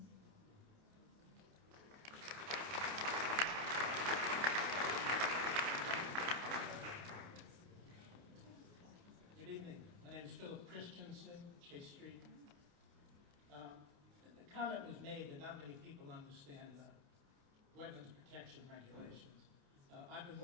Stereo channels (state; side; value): late; left; 28 ms